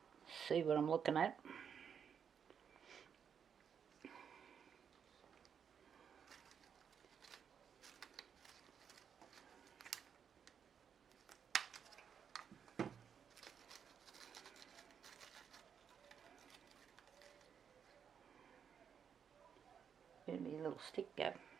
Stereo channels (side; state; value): left; quieter; 7.4 dB